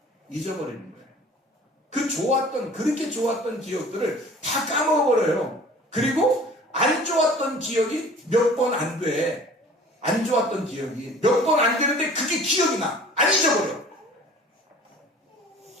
잊어버리는 거예요. 그렇게 좋았던 기억들을 다 까먹어버려요. 그리고 안 좋았던 기억이 몇 번 안 돼. 안 좋았던 기억이 몇 번 안 되는데 그게 기억이 나. 안 잊어버려.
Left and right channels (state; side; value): normal; both; correlation 0.46